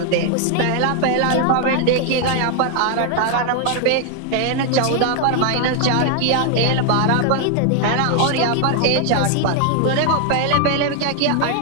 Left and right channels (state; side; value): different; both; correlation 0.00